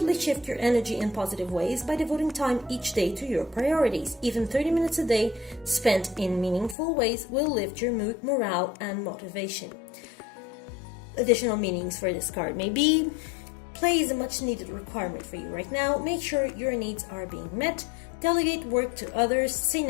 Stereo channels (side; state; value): right; drops out; at 6.8 s